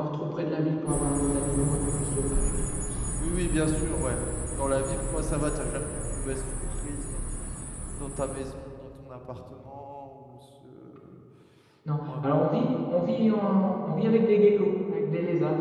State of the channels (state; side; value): identical; both; correlation 1.00